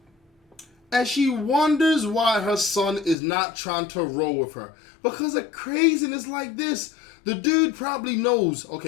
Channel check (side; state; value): right; drops out; at 3.2 s